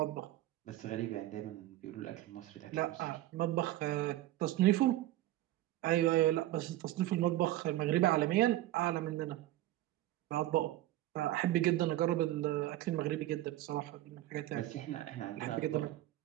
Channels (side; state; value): left; quieter; 15.1 dB